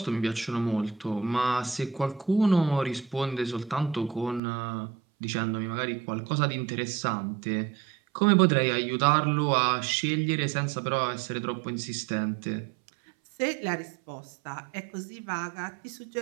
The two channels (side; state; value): left; drops out; at 4.4 s